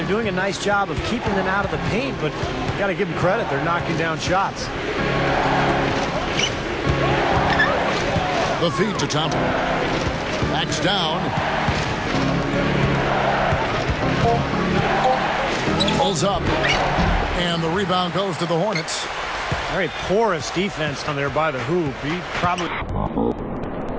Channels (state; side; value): identical; both; correlation 1.00